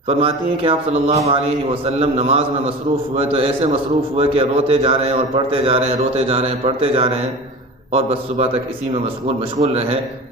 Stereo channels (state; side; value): normal; both; correlation 0.34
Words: فرماتی ہیں کہ آپ صلی اللہ علیہ وسلم نماز میں مصروف ہوئے تو ایسے مصروف ہوئے کہ روتے جا رہے ہیں اور پڑھتے جا رہے ہیں، روتے جا رہے ہیں پڑھتے جا رہے ہیں، اور بس صبح تک اسی میں مشغول رہے۔